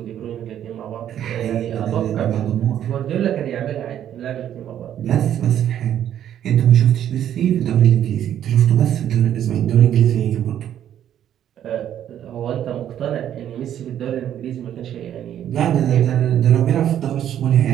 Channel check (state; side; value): quieter; left; 10.5 dB